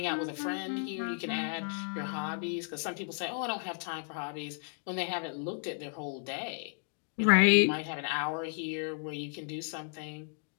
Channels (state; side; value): silent; right; 55 dB below the other